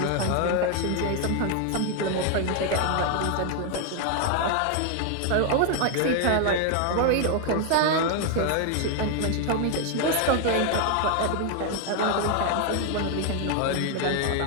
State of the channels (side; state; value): both; different; correlation 0.00